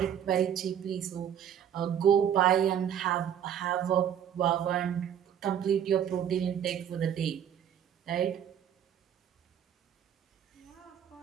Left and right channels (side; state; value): left; quieter; 9.3 dB